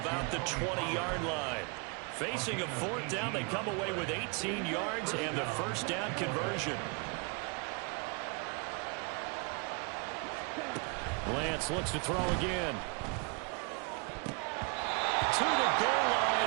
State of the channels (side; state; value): left; quieter; 33.0 dB